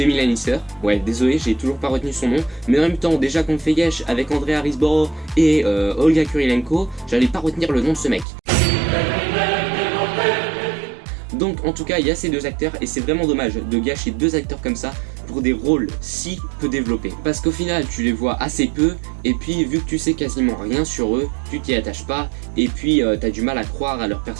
Lannister. Ouais, désolé, j'ai toujours pas retenu son nom. Mais en même temps, déjà qu'on fait Yesh avec Andrea Riseborough et Olga Kurilenko, j'allais pas retenir le nom de ce mec. Donc en tout cas il y a ces deux acteurs et c'est vraiment dommage de gâcher 2 acteurs comme ça pour des rôles si peu développés. Parce qu'au final tu les vois assez peu et puis vu que tu sais quasiment rien sur eux, tu t'y attaches pas et puis t'as du mal à croire à leur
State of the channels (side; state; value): left; drops out; at 8.2 s